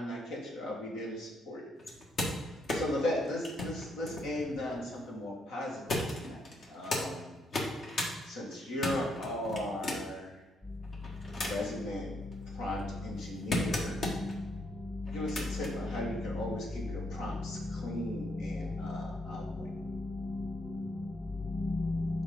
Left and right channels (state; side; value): normal; both; correlation 0.75